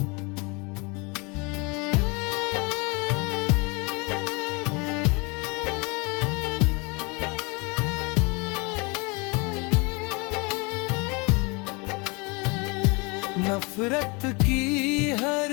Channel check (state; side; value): quieter; right; 29.2 dB